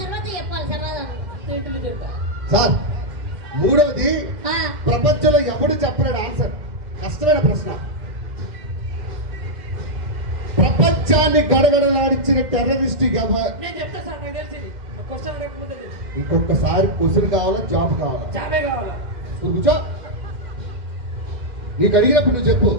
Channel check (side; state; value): left; late; 2.1 ms